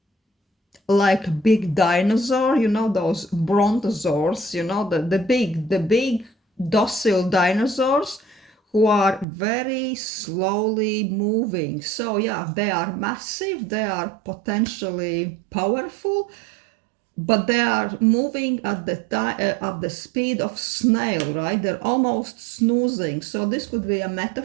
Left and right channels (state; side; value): drops out; left; at 9.2 s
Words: like big dinosaur, those brontosaurs, the big docile dinosaurs who are very slowly moving. So yeah, they are massive, they are potentially powerful, but they are moving at the speed of snail, right? They're almost snoozing. So this could be a